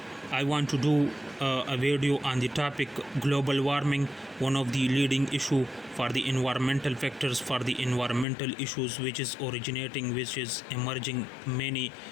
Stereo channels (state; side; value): drops out; right; at 8.2 s